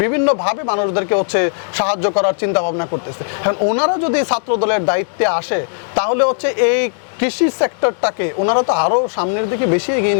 বিভিন্নভাবে মানুষদেরকে হচ্ছে সাহায্য করার চিন্তা ভাবনা করতেছে। এখন ওনারা যদি ছাত্র দলের দায়িত্বে আসে তাহলে হচ্ছে এই কৃষি সেক্টরটাকে ওনারা তো আরো সামনের দিকে বেশি এগিয়ে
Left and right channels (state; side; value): silent; right; digital silence